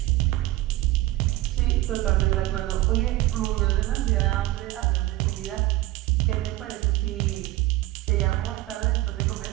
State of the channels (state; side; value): quieter; left; 16.7 dB